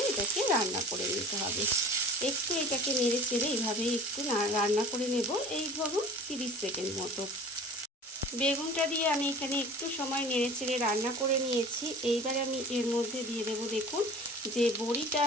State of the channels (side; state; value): both; normal; correlation 0.43